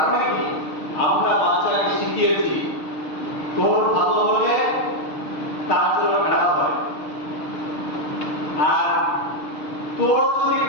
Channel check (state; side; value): late; right; 6.6 ms